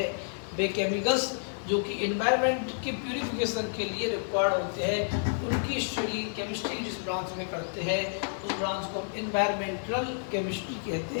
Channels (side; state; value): right; silent; digital silence